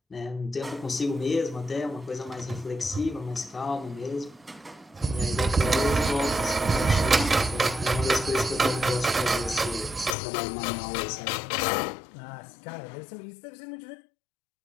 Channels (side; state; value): right; drops out; at 10.2 s